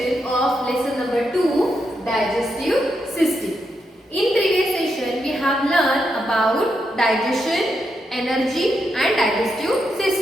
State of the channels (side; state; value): both; normal; correlation 0.82